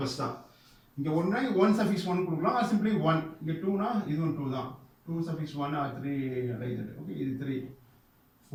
தான். இங்கே 1 சஃபிக்ஸ் 1 கொடுக்கலாம், ஆர் சிம்பிளி 1. இங்கே 2னா இதுவும் 2 தான். 2 சஃபிக்ஸ் 1 ஆர் 3 லைக். ஓகே, இது 3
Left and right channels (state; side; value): identical; both; correlation 1.00